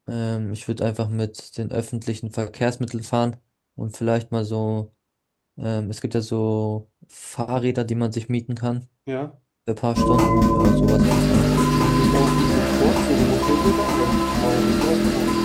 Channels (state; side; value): identical; both; correlation 1.00